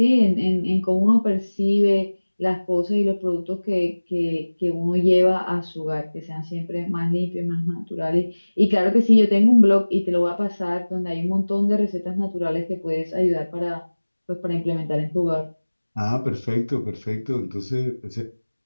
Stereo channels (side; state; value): both; inverted; correlation -1.00